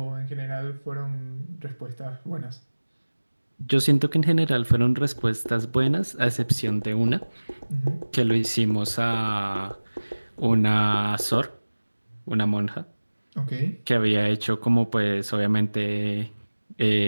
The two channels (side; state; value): both; inverted; correlation -1.00